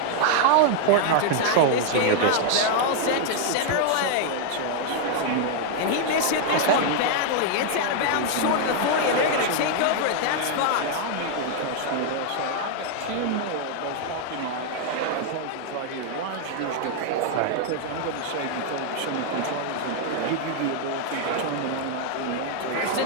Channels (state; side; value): different; both; correlation 0.00